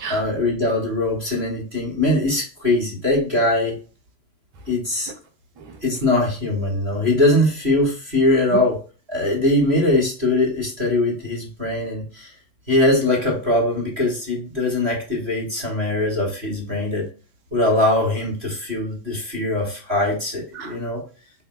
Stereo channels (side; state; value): left; late; 3.0 ms